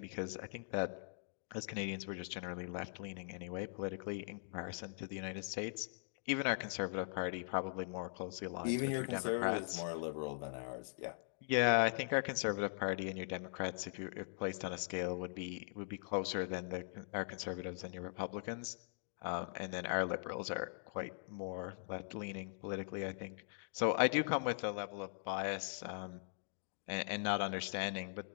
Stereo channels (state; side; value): silent; right; digital silence